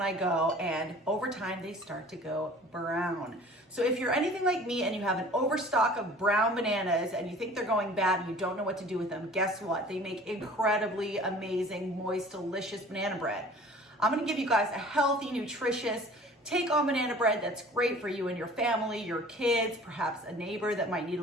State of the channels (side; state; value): both; normal; correlation 0.47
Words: I go, and over time they start to go brown. So if you're anything like me and you have an overstock of brown bananas and you think they're going bad and you don't know what to do with them, guess what? They make incredibly amazing, moist, delicious banana bread. I'm gonna give you guys a healthy, nutritious, take-on banana bread that's great for you and your family, your kids, perhaps a neighbor that might need